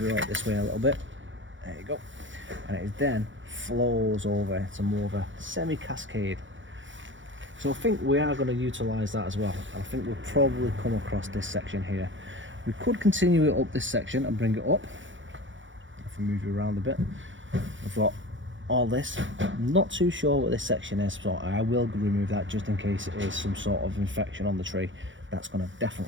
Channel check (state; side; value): late; left; 0.56 ms